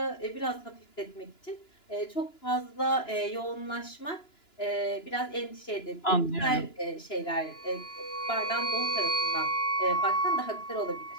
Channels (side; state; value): right; late; 2.9 ms